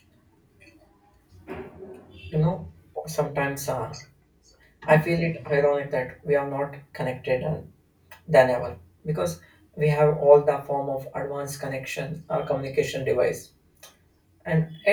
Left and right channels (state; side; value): identical; both; correlation 1.00